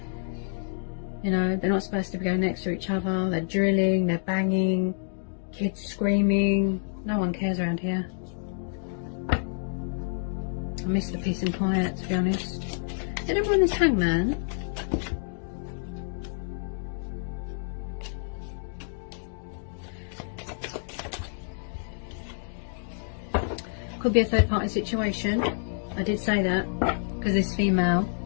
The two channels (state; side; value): silent; right; digital silence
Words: You know, they're not supposed to be going next to each other. They're drilling, they're banging, kids screaming. No one cares around here. I miss the peace and quiet, to be honest. Did everyone this Hangman? Could be a third party situation. I did say that because this female,